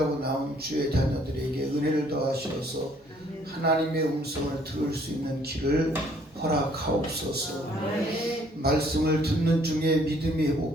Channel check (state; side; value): normal; both; correlation 0.62